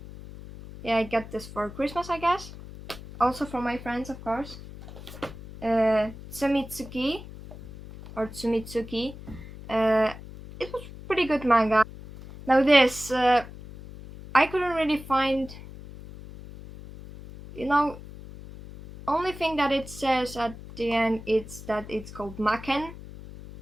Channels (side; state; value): left; noise; hum, 15 dB below the sound